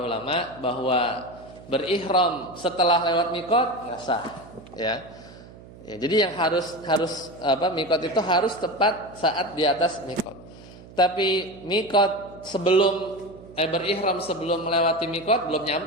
ulama bahwa berihram setelah lewat mikot nggak sah ya. Ya, jadi yang harus mikot itu harus tepat saat di atas mikot. Tapi mikot berihram sebelum melewati mikot belum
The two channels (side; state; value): right; noise; hum, 19 dB below the sound